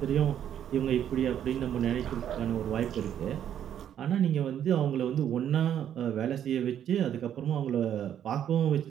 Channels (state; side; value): quieter; left; 9.9 dB